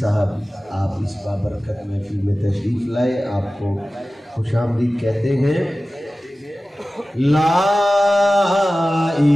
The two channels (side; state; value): both; normal; correlation 0.96